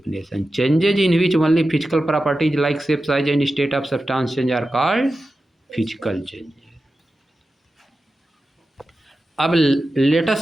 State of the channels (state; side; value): normal; both; correlation 0.93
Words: Changes in which only physical properties like shape, size and state of substance change are called physical changes. अब let